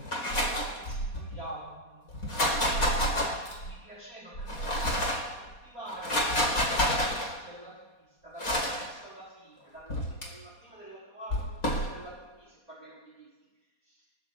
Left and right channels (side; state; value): right; late; 4.2 ms